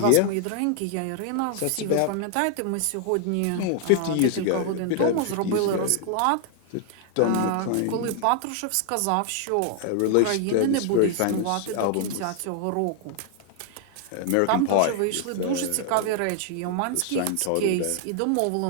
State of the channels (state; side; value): different; both; correlation 0.00